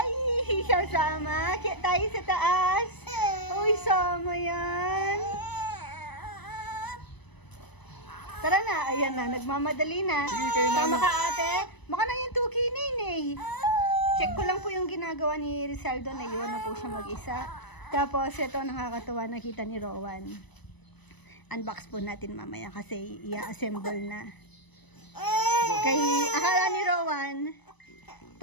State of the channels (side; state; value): right; late; 1.0 ms